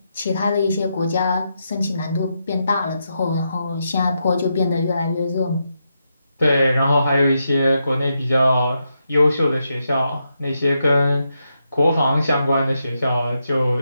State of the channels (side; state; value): both; inverted; correlation -0.84